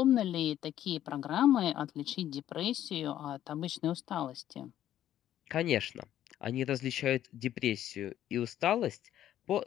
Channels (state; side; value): quieter; right; 11.8 dB